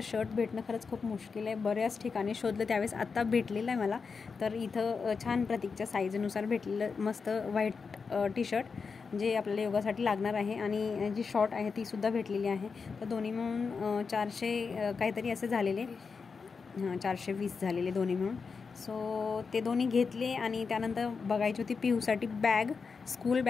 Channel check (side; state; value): right; quieter; 5.2 dB